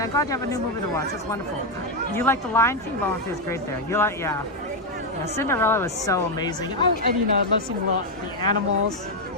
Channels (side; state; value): both; normal; correlation 0.03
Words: I'm glad you have a new movie to watch. That's wonderful. You like The Lion King? Lion King is great there. You like, yeah. Cinderella was so amazing. Oh, and you know, I love seeing the animals.